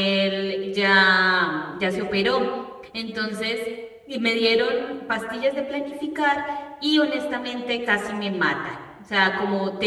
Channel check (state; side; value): identical; both; correlation 1.00